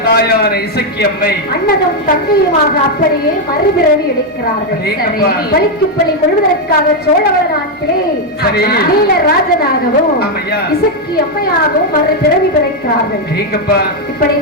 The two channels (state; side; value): normal; both; correlation 0.02